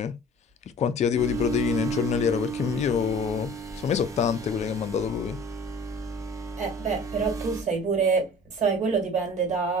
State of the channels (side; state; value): both; normal; correlation 0.46